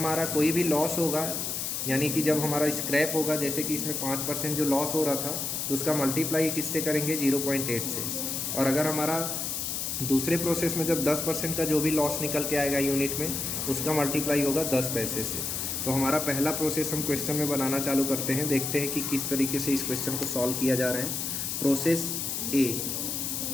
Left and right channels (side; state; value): left; noise; hiss, 2 dB below the sound